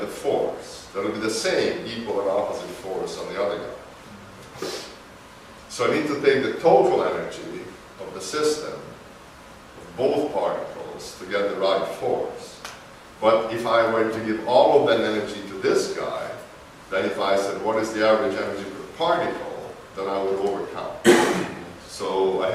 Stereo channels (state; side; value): identical; both; correlation 1.00